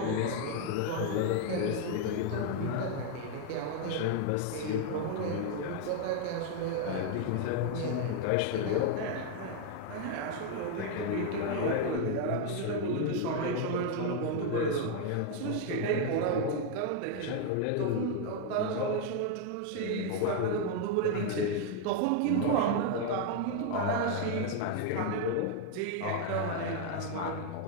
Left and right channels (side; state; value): both; different; correlation 0.00